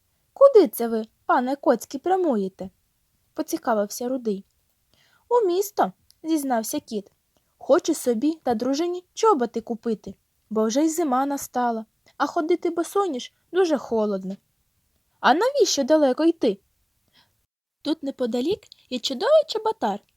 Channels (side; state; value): both; identical; correlation 1.00